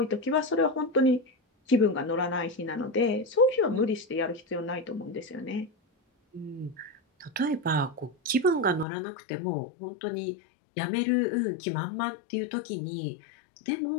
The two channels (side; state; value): right; drops out; at 8.8 s